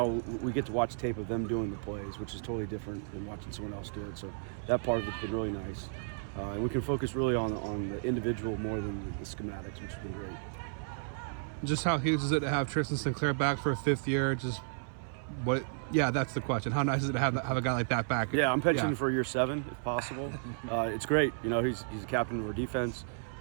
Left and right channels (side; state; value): left; silent; 56 dB below the other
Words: we get to watch tape of them doing the plays, which is totally different than watching someone else do it. So that part of it's been really nice. And we can focus really on the individual more than the schematics, which has been great. Just how huge is it to have Trist Sinclair back for a 5th year? Yeah, that's the question. How nice is it to have a guy like that back? Yeah, I'm pensioning for year 7 if possible. It's great. He's the captain of our defense.